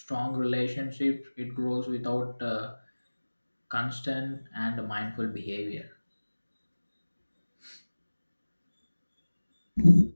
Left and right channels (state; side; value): inverted; both; correlation -1.00